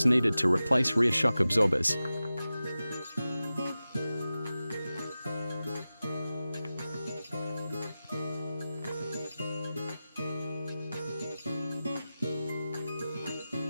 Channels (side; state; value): both; inverted; correlation -0.95